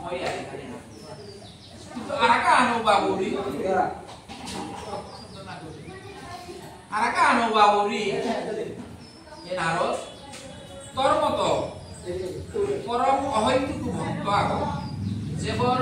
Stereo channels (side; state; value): both; identical; correlation 1.00